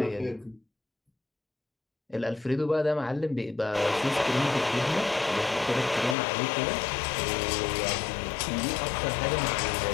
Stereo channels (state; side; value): drops out; right; at 6.2 s